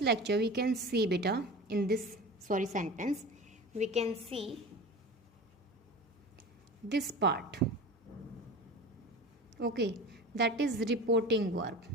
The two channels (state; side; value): normal; both; correlation 0.34